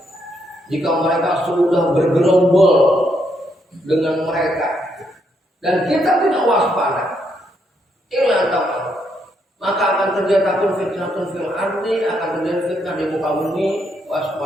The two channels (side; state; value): both; normal; correlation 0.76